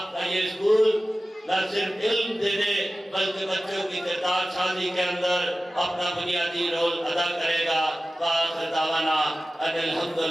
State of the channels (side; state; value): both; normal; correlation 0.96